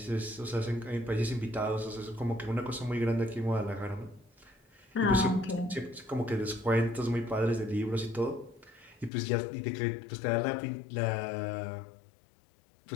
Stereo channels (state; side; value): drops out; right; at 9.1 s